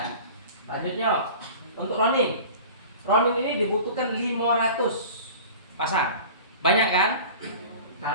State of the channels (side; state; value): both; inverted; correlation -0.40